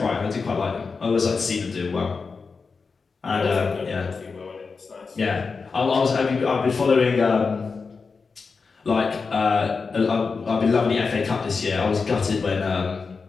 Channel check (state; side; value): quieter; right; 4.8 dB